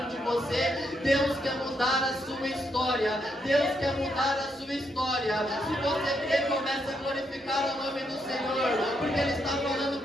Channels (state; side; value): normal; both; correlation 0.78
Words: de você. Deus quer mudar a sua história. Deus quer mudar a sua história. Se você crê, comece a glorificar o nome do Senhor, porque Ele está falando